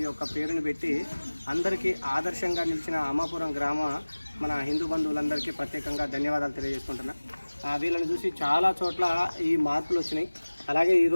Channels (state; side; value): inverted; both; correlation -1.00